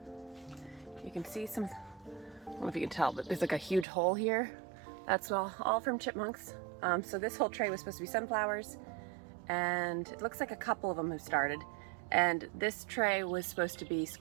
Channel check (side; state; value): left; drops out; at 3.9 s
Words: you can see some, I don't know if you can tell, but there's like a huge hole here. That's all from chipmunks. So this whole tray was supposed to be sunflowers, and it looks like a couple of them have started. And this tray was supposed to be